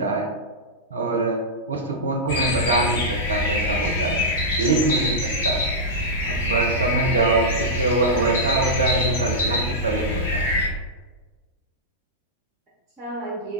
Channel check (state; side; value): normal; both; correlation -0.12